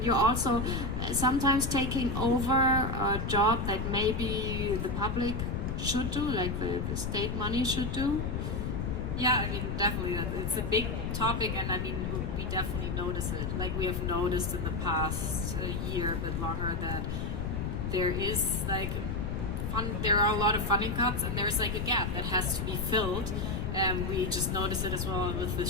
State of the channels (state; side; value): noise; left; rumble, 2 dB below the sound